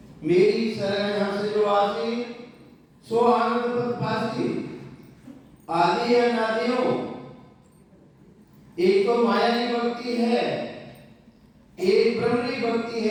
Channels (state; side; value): identical; both; correlation 1.00